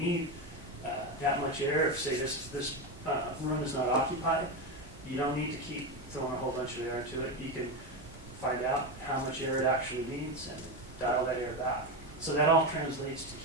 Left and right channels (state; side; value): normal; both; correlation 0.15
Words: that much air, if say this room is not occupied, you don't need to keep throwing a whole bunch of air into it. You can find out how much air it actually needs and dial that air back. So that all translates